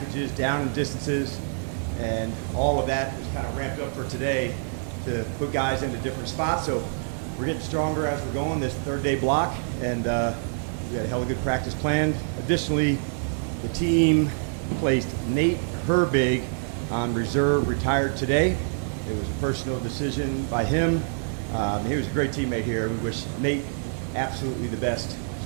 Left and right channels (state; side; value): silent; left; digital silence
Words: down and distances, and all of that is kind of ramped up for today to put guys into different spots. So we're getting stronger as we're going this 3rd-day block, and we got a hell of a good practice plan. Additionally, the team placed Nate Herbig on reserve, retired today. It was a personal decision by him. He was a great teammate here. We wish Nate absolutely the best,